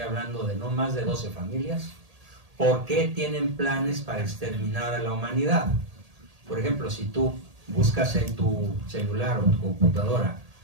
de no más de 12 familias, ¿por qué tienen planes para exterminar a la humanidad? Por ejemplo, si tú buscas en tu celular o tu computadora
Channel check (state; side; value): late; left; 1.8 ms